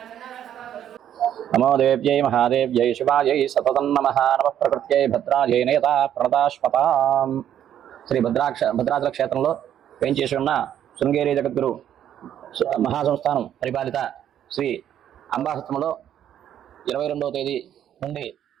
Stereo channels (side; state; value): left; quieter; 10.4 dB